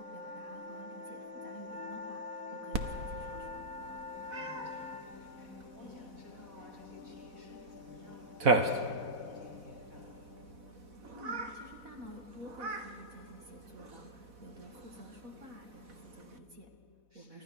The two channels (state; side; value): late; left; 4.1 ms